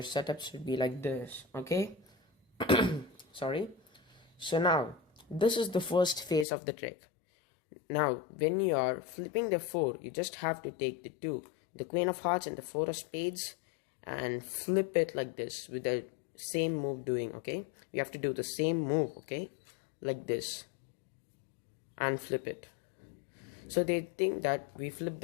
setup should be like this, okay? Sorry. So now this is the first phase of the trick. Now when you are flipping the 4, you just have to take the 2, the queen of hearts and the 4 of spades, and flip it like this with the same move doing, okay? You have to do the same move, okay? Like this, and flip it. So they think that we flip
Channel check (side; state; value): right; drops out; at 6.5 s